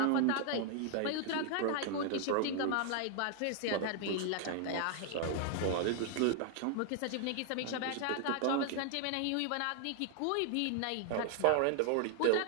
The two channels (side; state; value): both; different; correlation 0.00